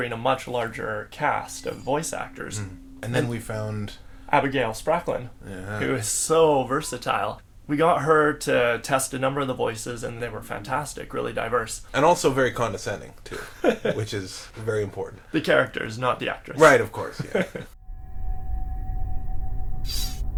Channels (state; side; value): identical; both; correlation 1.00